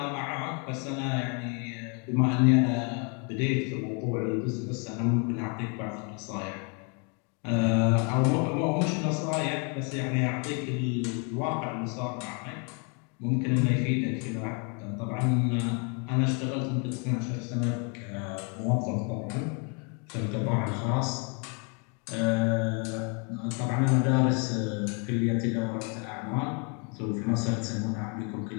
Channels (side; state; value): right; quieter; 36.3 dB